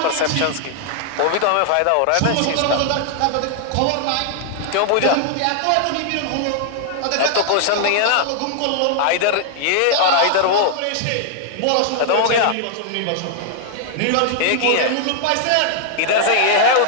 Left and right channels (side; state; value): both; different; correlation 0.00